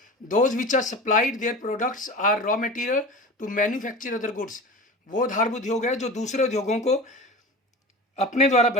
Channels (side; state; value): both; normal; correlation 0.33